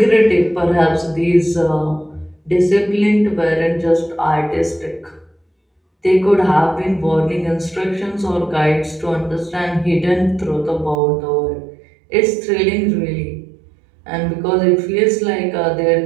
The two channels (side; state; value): left; drops out; at 11.0 s